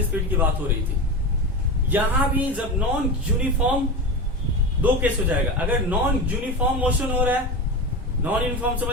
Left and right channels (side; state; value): both; normal; correlation 0.24